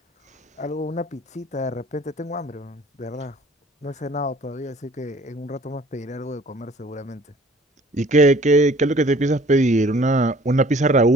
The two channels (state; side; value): normal; both; correlation 0.53